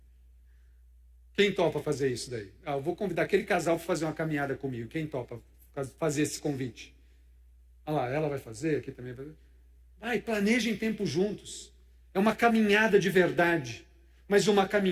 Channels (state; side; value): identical; both; correlation 1.00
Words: Quem topa fazer isso daí? Eu vou convidar aquele casal para fazer uma caminhada comigo. Quem topa fazer esse convite? Olha lá, ela vai fazer, aqui também vai fazer. Vai, planejem tempo juntos. É uma caminhada de verdade, mas uma